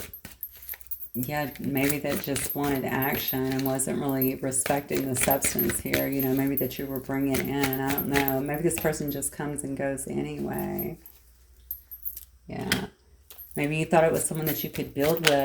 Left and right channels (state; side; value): identical; both; correlation 1.00